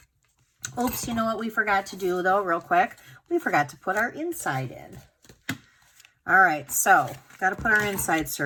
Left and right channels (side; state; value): both; identical; correlation 1.00